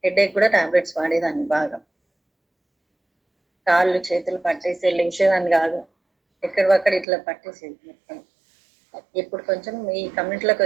హెడేక్ కూడా టాబ్లెట్స్ వాడేదాన్ని బాగా. కాళ్ళు చేతులు పట్టేసి లేచేదాన్ని కాదు, ఎక్కడివక్కడ ఇట్లా పట్టేసేది మొత్తం. ఇప్పుడు కొంచెం ఈ కమ్యూనిటీలోకి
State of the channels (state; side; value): drops out; left; at 7.1 s